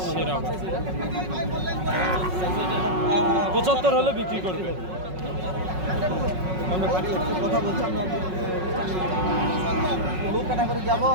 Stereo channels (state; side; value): late; left; 5.4 ms